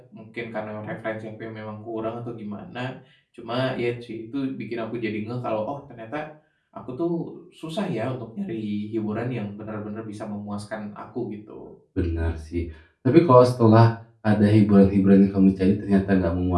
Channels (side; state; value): both; identical; correlation 1.00